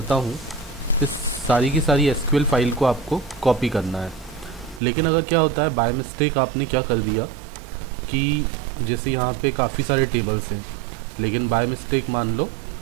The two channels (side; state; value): left; drops out; at 4.8 s